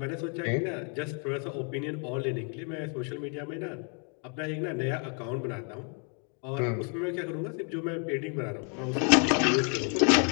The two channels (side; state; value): right; quieter; 40.0 dB